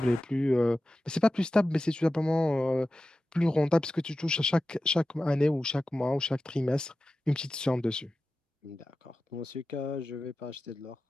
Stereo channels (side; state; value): both; normal; correlation 0.94